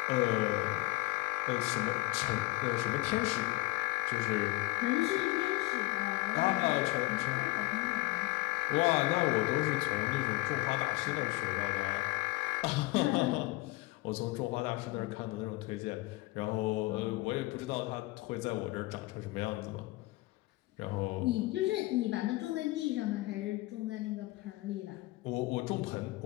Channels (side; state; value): right; quieter; 21.5 dB